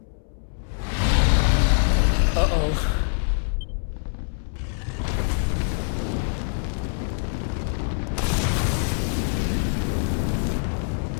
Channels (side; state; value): right; silent; 62 dB below the other